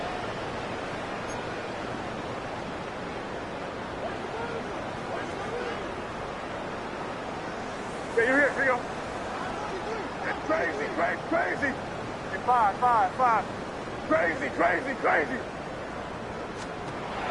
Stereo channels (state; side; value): identical; both; correlation 1.00